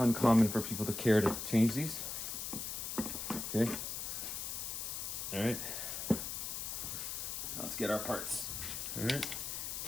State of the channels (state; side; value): noise; left; hiss, 4 dB below the sound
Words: for people to care to change these. Okay. All right. Let's get our parts. All right.